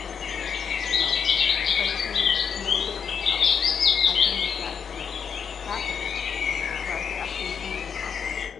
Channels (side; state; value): right; quieter; 6.9 dB